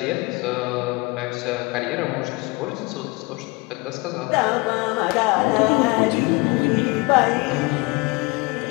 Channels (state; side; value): quieter; right; 25.8 dB